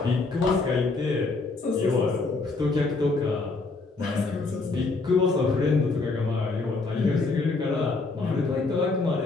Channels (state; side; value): quieter; right; 3.7 dB